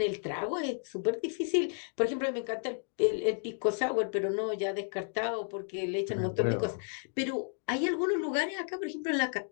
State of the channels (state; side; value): silent; right; 56 dB below the other